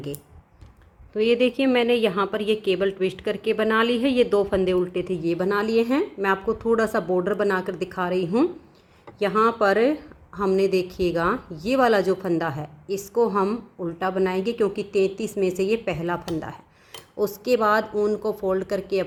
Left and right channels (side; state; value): both; identical; correlation 1.00